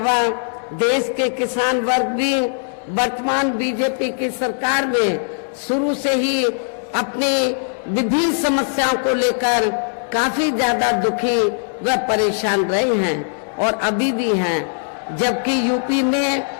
देश के किसान वर्ग भी वर्तमान बीजेपी की सरकार में शुरू से ही अपनी विभिन्न समस्याओं को लेकर काफी ज्यादा दुखी व परेशान रहे हैं और अभी भी हैं, जबकि यूपी में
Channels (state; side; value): silent; right; digital silence